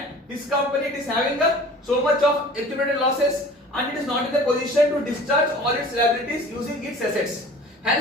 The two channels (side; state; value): both; normal; correlation 0.44